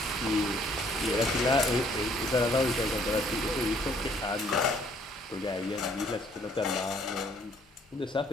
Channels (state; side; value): normal; both; correlation 0.63